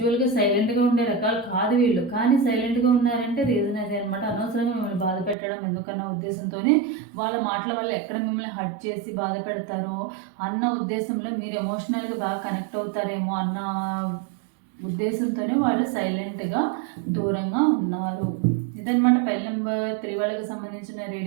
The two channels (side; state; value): left; drops out; at 5.4 s